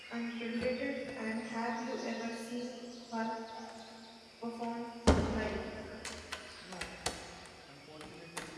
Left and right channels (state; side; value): identical; both; correlation 1.00